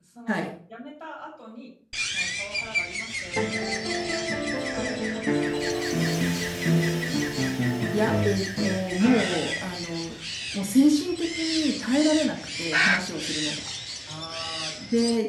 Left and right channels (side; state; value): both; identical; correlation 1.00